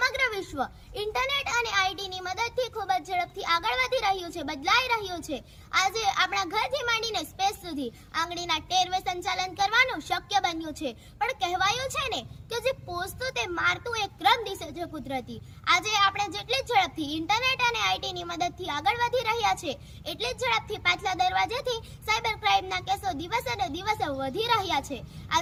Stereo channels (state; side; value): identical; both; correlation 1.00